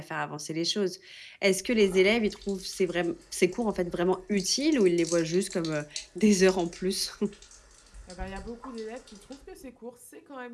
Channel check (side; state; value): both; identical; correlation 1.00